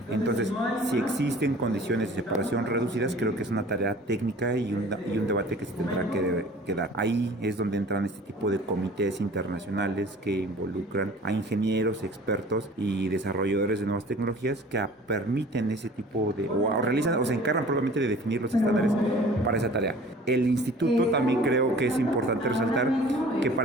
Entonces, si existen condiciones de separación reducidas, creo que es una tarea técnica y un debate que se tendrá que dar. Ahí es donde entran este tipo de comités internacionales que involucran a ingenieros, expertos y desarrolladores de nuevas tecnologías que permiten ese tipo de, o realizan o se encargan probablemente de definir los estándares para esa tarea. El instituto también creo que es importante resaltar que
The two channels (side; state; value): both; normal; correlation 0.47